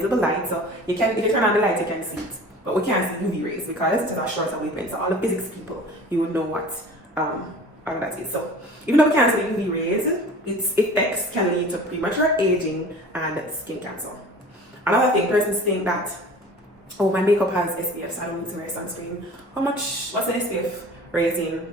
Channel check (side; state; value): both; normal; correlation 0.42